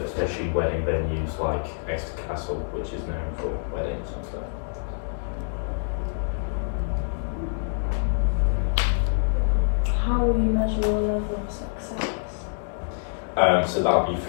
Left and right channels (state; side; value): silent; right; digital silence